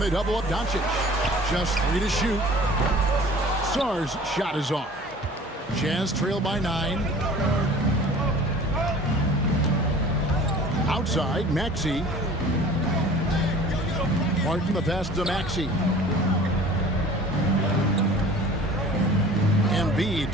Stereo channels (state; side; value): normal; both; correlation 0.45